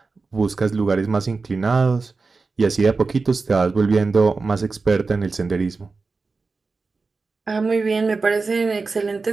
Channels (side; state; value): left; quieter; 4.2 dB